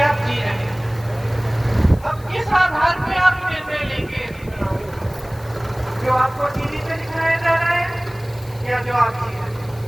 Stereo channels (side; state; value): left; noise; hiss, 25 dB below the sound